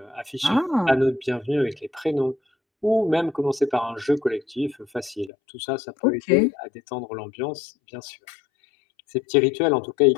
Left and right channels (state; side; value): drops out; right; at 5.3 s